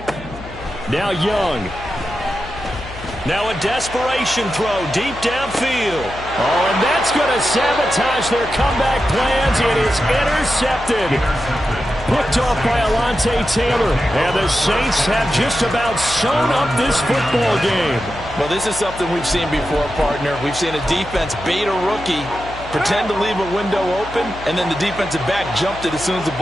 Now Young. Now a desperation throw deep downfield. Oh, and that's going to sabotage their comeback plans. It is intercepted. Picked off by Alontae Taylor. And the Saints have just about sewn up this football game. Well, this is something we've seen before, partner. We've seen a defense bait a rookie, pretend to leave a window open, and then the defensive back jumped it as soon as the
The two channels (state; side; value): noise; left; hum, 15 dB below the sound